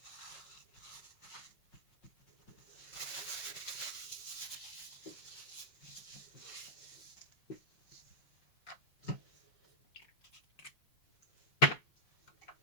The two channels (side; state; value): right; late; 5.5 ms